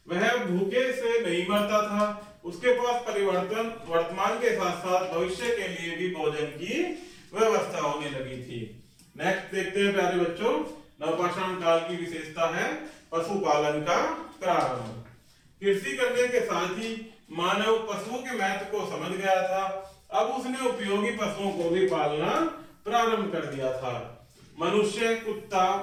वह भूखे से नहीं मरता था। उसके पास परिवर्तन वर्तमान के साथ साथ भविष्य के लिए भी भोजन की व्यवस्था होने लगी थी। नेक्स्ट देखते हैं प्यारे बच्चों नवपाषाण काल की विशेषता है पशुपालन का प्रारंभ। कृषि करने के साथ ही मानव पशुओं के महत्व को समझ गया था। अब उसने उपयोगी पशुओं को भी पालना प्रारंभ कर दिया था। मनुष्य कुत्ता,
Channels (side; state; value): both; identical; correlation 1.00